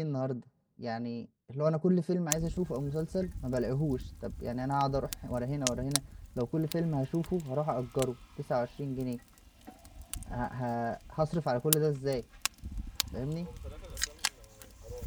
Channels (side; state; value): both; identical; correlation 1.00